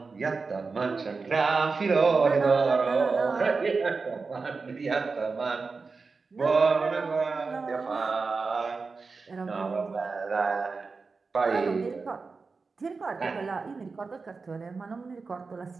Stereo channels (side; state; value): left; quieter; 4.4 dB